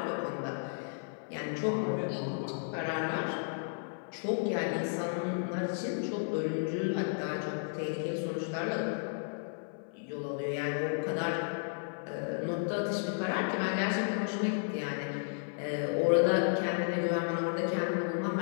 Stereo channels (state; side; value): silent; right; 56 dB below the other